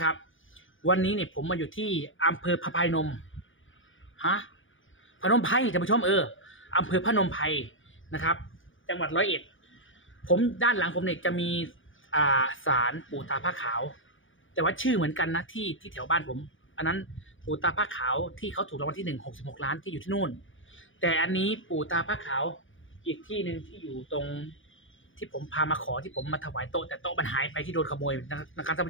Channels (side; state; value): right; late; 0.57 ms